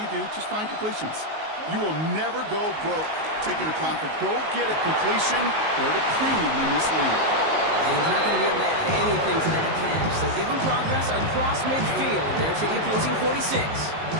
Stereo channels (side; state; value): left; late; 19 ms